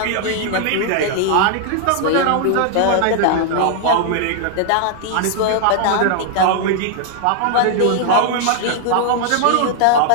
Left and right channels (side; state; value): both; different; correlation 0.00